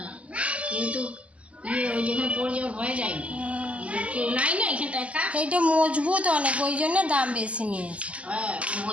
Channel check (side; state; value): left; late; 0.064 ms